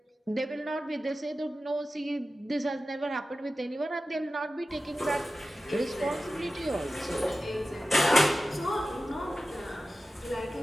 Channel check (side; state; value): both; normal; correlation 0.94